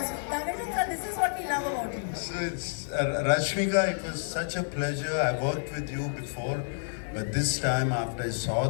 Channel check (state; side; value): silent; right; digital silence